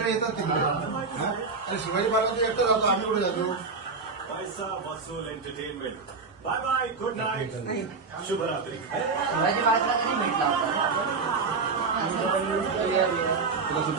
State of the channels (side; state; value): left; quieter; 4.5 dB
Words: येतात तिकडे, आणि शिवाजी पार्क एकटा जातो, आम्ही कुठे जातो. पैसा वसूल entertainment. Bye bye, good night, शुभरात्री. शिवाजी पार्कला कधी भेटला होता?